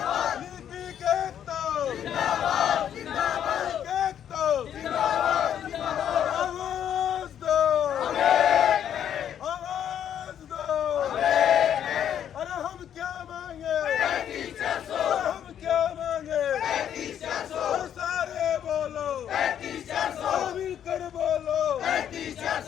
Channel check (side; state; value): right; quieter; 9.6 dB